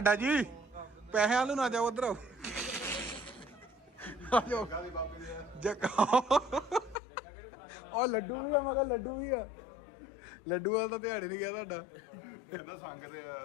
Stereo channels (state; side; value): drops out; right; at 7.0 s